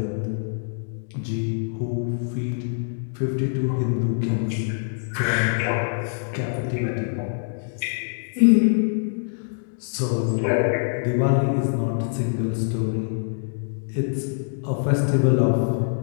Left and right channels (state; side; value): silent; right; digital silence